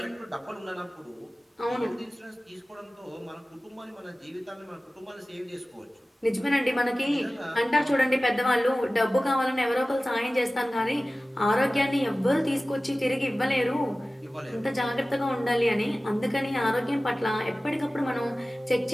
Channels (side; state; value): both; normal; correlation 0.97